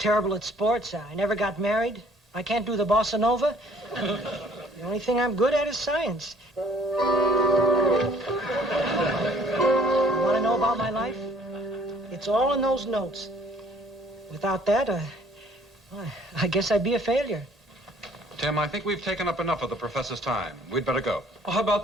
at sports. I never got married. I can't do the bossa nova. The only thing I'm good at is science. You want to know about my life? It's all in those notes. Without that, I guess I'd be a failure. Tim, I think we've taken up enough of the professor's time. We'd better go. Well, how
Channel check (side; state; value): both; normal; correlation 0.58